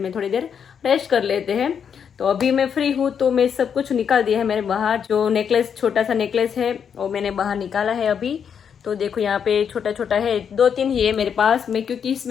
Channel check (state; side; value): quieter; right; 7.5 dB